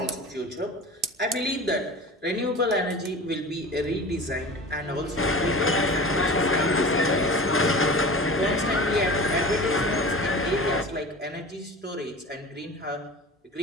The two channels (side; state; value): both; normal; correlation 0.35